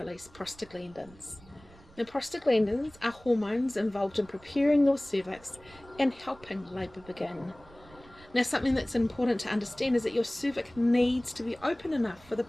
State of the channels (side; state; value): right; noise; rumble, 24 dB below the sound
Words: prostaglandins. Now, prostaglandins are hormones involved in preparing your cervix and helping labour begin. Now, something that's important to understand is that your cervix needs to be open enough for the